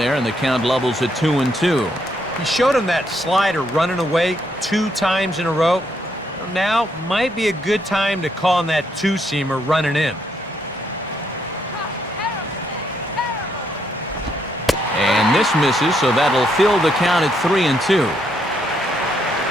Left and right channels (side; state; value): both; normal; correlation 0.74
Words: and the count levels at 2-2. He showed him that slider running away 2 times in a row. Now might be a good time to call on that 2-seamer running in. And this misses, so that'll fill the count at 3-2.